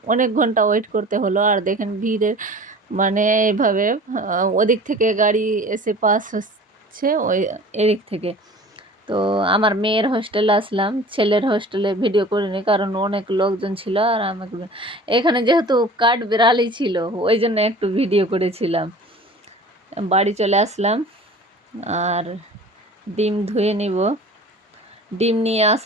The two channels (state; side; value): normal; both; correlation 0.43